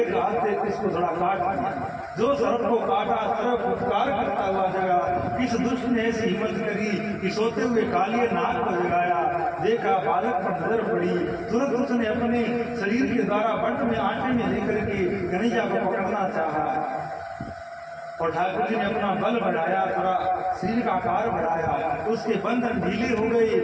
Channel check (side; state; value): both; identical; correlation 1.00